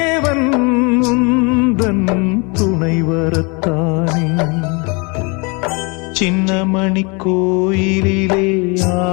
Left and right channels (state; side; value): quieter; right; 30.9 dB